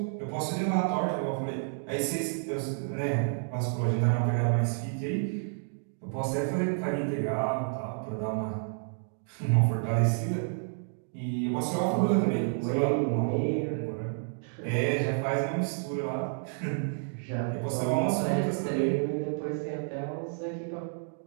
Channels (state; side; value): silent; left; digital silence